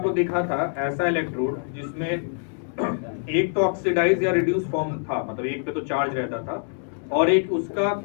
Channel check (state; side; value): silent; right; 56 dB below the other